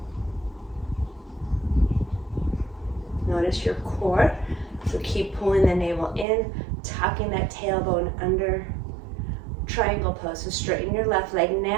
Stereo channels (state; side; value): drops out; left; at 6.2 s